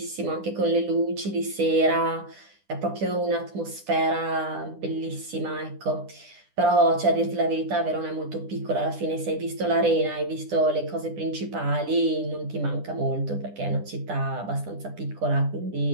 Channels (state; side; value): late; left; 10 ms